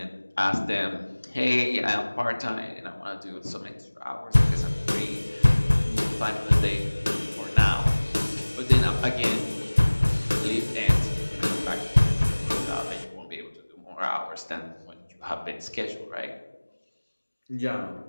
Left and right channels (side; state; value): both; inverted; correlation -1.00